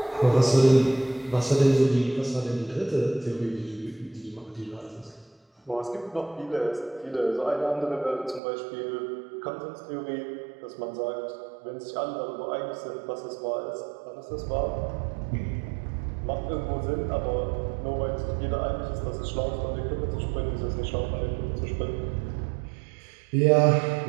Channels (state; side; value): drops out; left; at 8.4 s